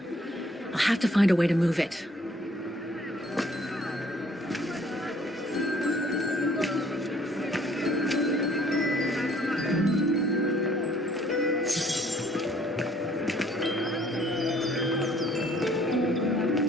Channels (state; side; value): normal; both; correlation 0.60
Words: I'll have to find a way to move it.